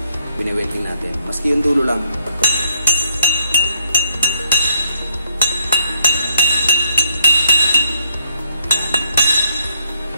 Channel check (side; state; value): both; inverted; correlation -0.71